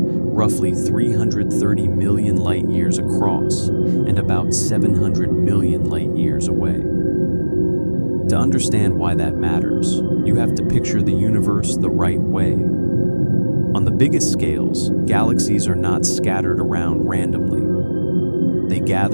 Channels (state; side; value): inverted; both; correlation -1.00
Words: 330 million light-years across and about 700 million light-years away. To understand why that matters, you have to picture the universe the right way. On the biggest scales, galaxies are not scattered around randomly. They